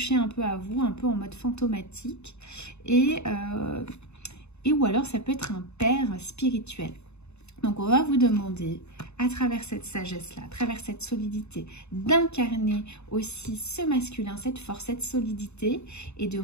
un peu à vous, un peu en mode fantomatique, et ou alors ça peut être un père spirituel. Donc on va vous demander, à travers cette sagesse-là, à travers cette solidité, d'incarner aussi ce masculin, cette force, cette solidité, et de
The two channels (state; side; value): late; right; 0.81 ms